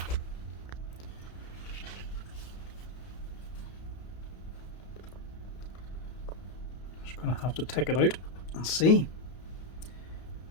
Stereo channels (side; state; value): right; late; 32 ms